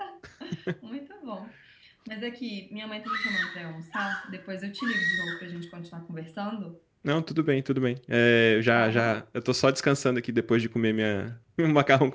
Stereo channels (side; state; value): both; identical; correlation 1.00